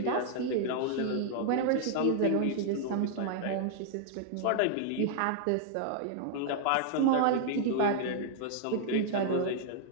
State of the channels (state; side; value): different; both; correlation -0.01